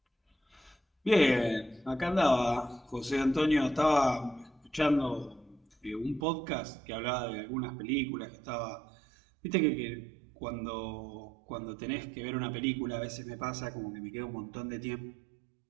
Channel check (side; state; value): left; drops out; at 6.2 s